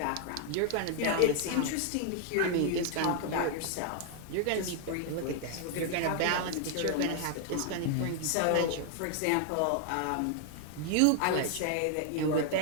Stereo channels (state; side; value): different; both; correlation 0.00